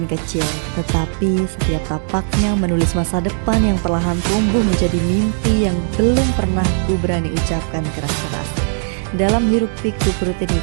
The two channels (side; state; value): left; silent; digital silence